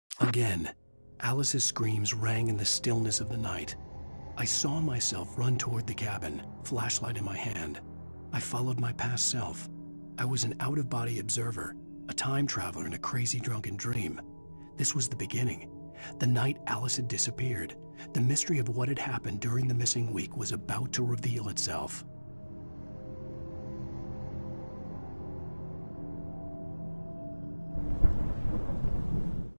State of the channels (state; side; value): inverted; both; correlation -1.00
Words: Again, Alice's screams rang in the stillness of the night. I saw myself run toward the cabin, flashlight in my hand. I followed my past self. I was an out-of-body observer, a time traveler in a crazy drunken dream. This was the beginning. The night Alice had disappeared. The mystery of what had happened during the missing week was about to reveal itself.